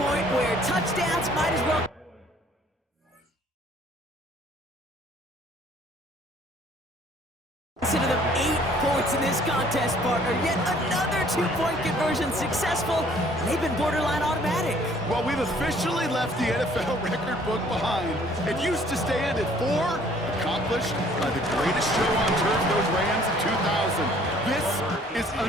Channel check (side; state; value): both; normal; correlation 0.58